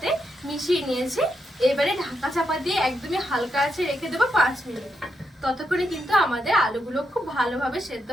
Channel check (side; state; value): both; normal; correlation 0.82